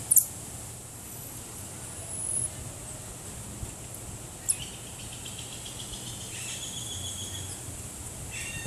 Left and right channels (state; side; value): identical; both; correlation 1.00